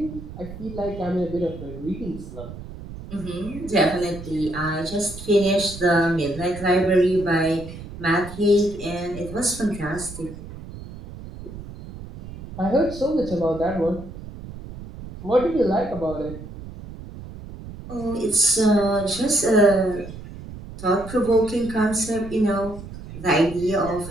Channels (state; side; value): noise; right; rumble, 13 dB below the sound